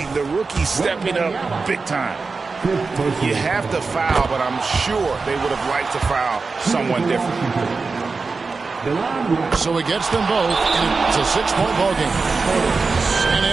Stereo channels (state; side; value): quieter; left; 4.3 dB